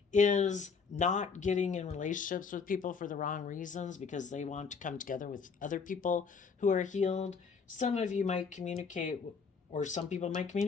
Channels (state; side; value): quieter; right; 5.5 dB